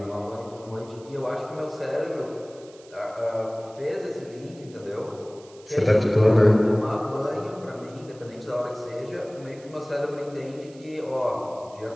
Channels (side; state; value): right; noise; hiss, 25 dB below the sound